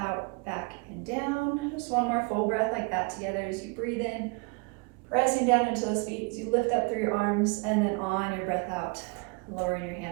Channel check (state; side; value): quieter; left; 30.3 dB